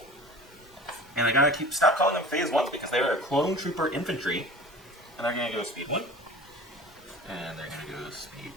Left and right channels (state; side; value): normal; both; correlation 0.40